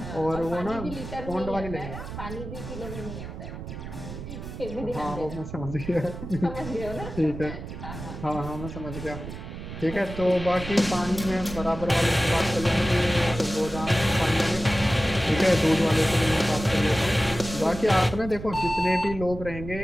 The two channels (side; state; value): right; noise; rumble, 10 dB below the sound